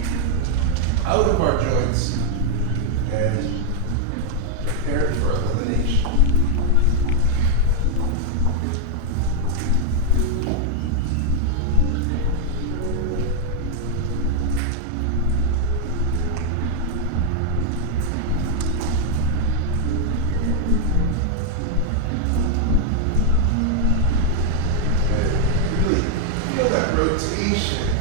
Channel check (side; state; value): both; different; correlation 0.00